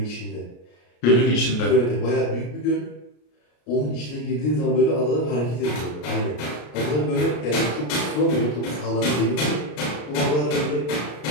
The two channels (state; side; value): late; right; 33 ms